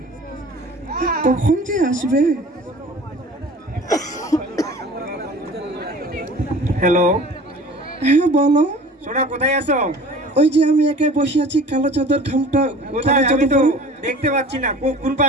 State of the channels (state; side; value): normal; both; correlation 0.43